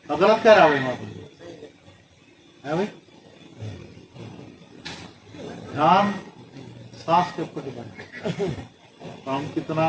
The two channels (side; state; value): both; identical; correlation 1.00